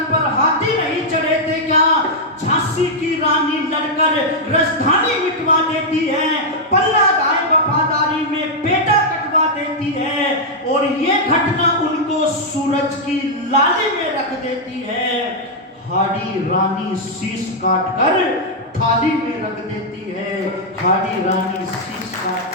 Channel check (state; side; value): normal; both; correlation -0.04